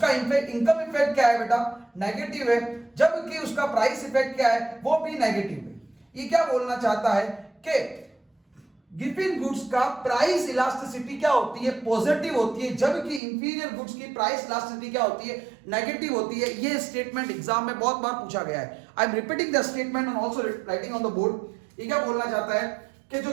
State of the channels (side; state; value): left; drops out; at 13.2 s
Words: इनकम इफेक्ट क्या है बेटा, नेगेटिव है, जबकि उसका प्राइस इफेक्ट क्या है, वो भी नेगेटिव है। ये क्या बोलना चाहता है कि गिवन गुड्स का प्राइस इलास्टिसिटी क्या होती है, पॉजिटिव होती है, जबकि इंफीरियर गुड्स की प्राइस इलास्टिसिटी क्या होती है, नेगेटिव होती है। ये स्टेटमेंट एग्जाम में बहुत बार पूछा गया है। I am repeating the statement and also writing on the board. ये क्या बोलना चाहता है कि जो